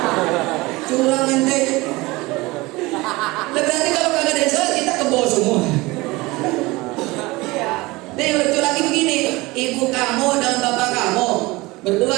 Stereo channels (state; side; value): quieter; left; 21.9 dB